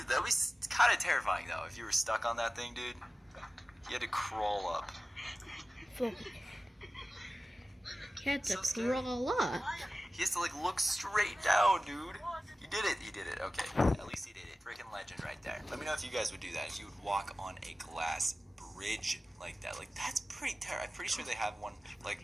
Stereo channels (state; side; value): normal; both; correlation 0.96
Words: That'd be kind of terrifying though if you were stuck on that thing, dude. You had to crawl up. You had to crawl up. He has to like look straight down, dude. You did it. You did it. Okay. At least he did it. Freaking legend right there. Let me know if you guys would do that. If you would walk on a glass bridge like that. Like that's pretty terrifying. I'm pretty sure they have one like